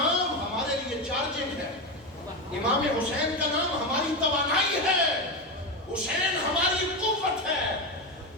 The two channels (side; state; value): both; normal; correlation 0.15